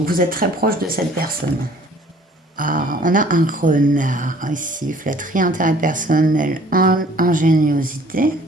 vous êtes très proche de cette personne. Ah, on a un renard ici, flatterie, intérêt personnel, ingéniosité.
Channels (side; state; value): both; normal; correlation 0.55